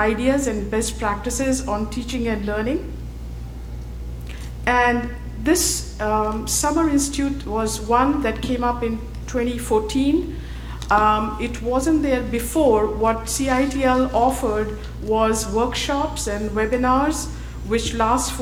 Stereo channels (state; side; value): identical; both; correlation 1.00